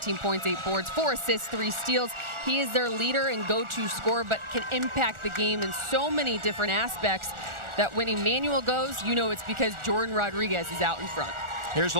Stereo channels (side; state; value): left; late; 1.4 ms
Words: points, 8 boards, 4 assists, 3 steals. He is their leader and go-to scorer, but can impact the game in so many different aspects that when Emmanuel goes, you know it's because Jordan Rodriguez is out in front. Here's a